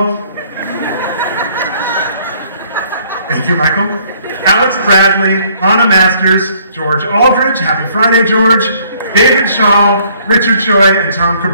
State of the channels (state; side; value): inverted; both; correlation -0.62